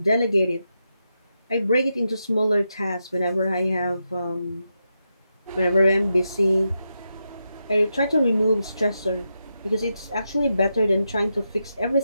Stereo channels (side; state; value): both; inverted; correlation -0.86